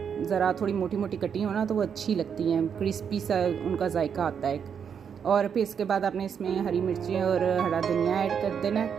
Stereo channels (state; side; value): quieter; left; 7.3 dB